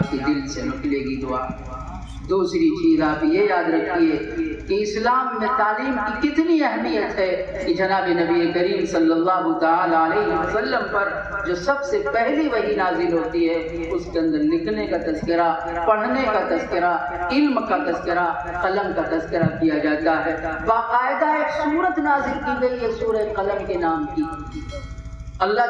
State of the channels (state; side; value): identical; both; correlation 1.00